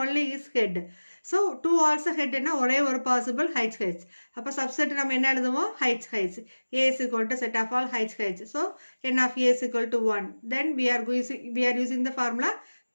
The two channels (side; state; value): both; inverted; correlation -1.00